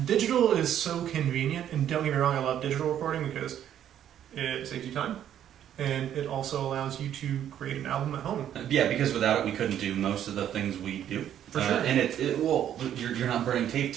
Digital is so convenient, and don't get me wrong, I love digital recording because it saves you time, and it also allows you to create an album at home. Yeah, because without it, we couldn't do most of the things we do. For sure. And you're not burning tape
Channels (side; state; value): left; quieter; 10.4 dB